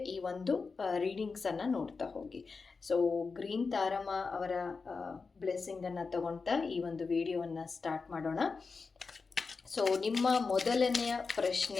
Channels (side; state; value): right; quieter; 4.6 dB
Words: ಈ ಒಂದು ರೀಡಿಂಗ್ಸನ್ನು ನೋಡ್ತಾ ಹೋಗಿ. ಸೊ ಗ್ರೀನ್ ತಾರಮ್ಮ ಅವರ ಬ್ಲೆಸ್ಸಿಂಗನ್ನು ತಗೊಳ್ತಾ ಈ ಒಂದು ವಿಡಿಯೋವನ್ನು ಸ್ಟಾರ್ಟ್ ಮಾಡೋಣ. ಸೊ ನಿಮ್ಮ ಮೊದಲನೆಯ